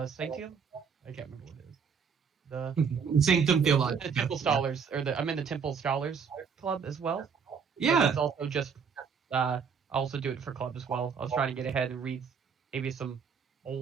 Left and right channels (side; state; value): left; quieter; 6.3 dB